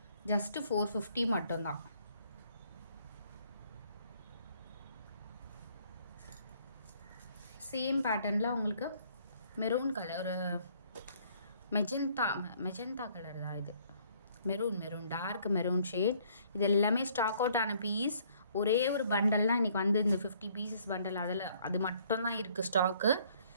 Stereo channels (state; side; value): inverted; both; correlation -0.62